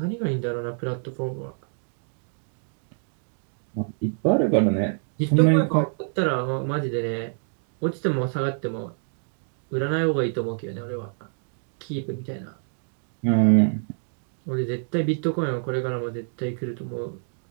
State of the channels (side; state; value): left; silent; digital silence